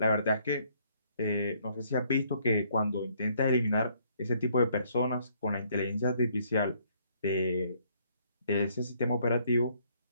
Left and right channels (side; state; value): both; inverted; correlation -0.67